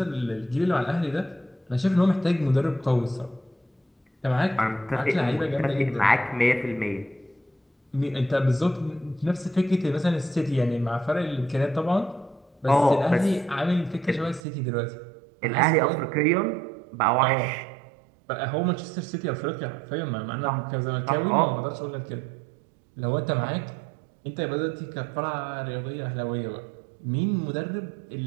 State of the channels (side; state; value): left; drops out; at 14.4 s